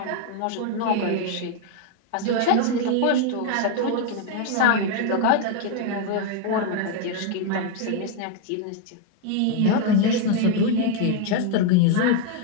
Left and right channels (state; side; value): different; both; correlation 0.01